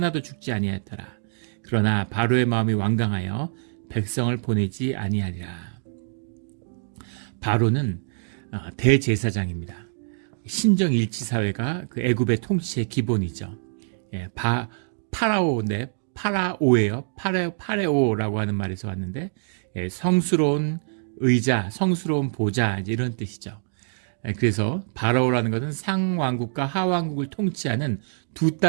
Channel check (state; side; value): silent; left; digital silence